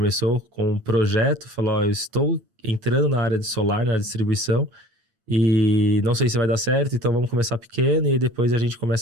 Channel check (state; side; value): late; left; 8.5 ms